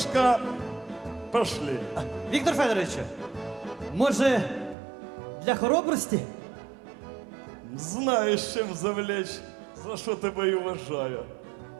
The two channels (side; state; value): left; drops out; at 4.8 s